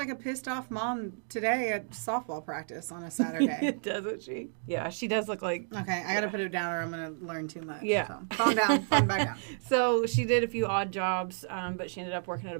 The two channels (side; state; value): left; silent; digital silence